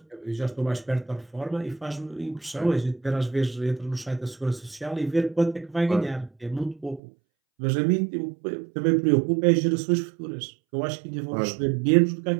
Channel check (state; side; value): drops out; left; at 7.0 s